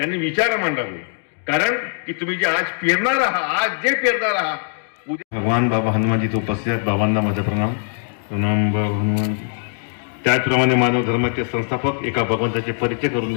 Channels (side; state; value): right; silent; digital silence